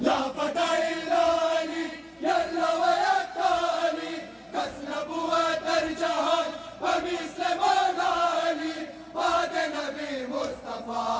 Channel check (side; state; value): both; identical; correlation 1.00